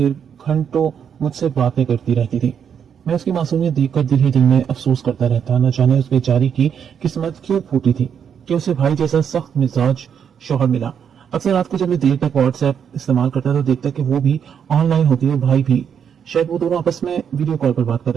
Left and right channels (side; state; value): left; quieter; 7.8 dB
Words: घंटों मुझसे बातें करती रहती थी। मैं उसकी मासूमियत देखकर दिल ही दिल में अफसोस करता रहता। न जाने उस बेचारी की किस्मत क्यों फूटी थी कि उसे भाई जैसा सख्त मिजाज शौहर मिला। अक्सर रात को जब मैं देर तक व्हाट्सएप इस्तेमाल करता तो देखता कि वो भी ऑनलाइन होती है, भाई भी। शायद वो दोनों आपस में वीडियो कॉल पर बात कर